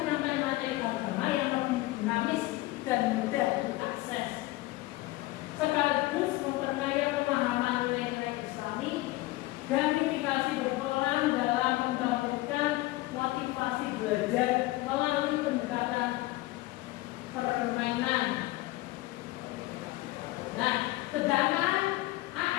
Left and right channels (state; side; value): quieter; right; 19.1 dB